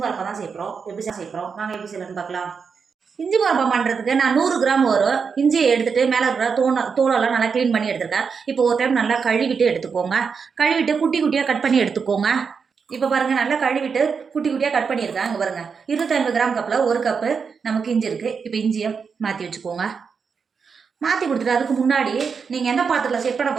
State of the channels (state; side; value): quieter; left; 5.8 dB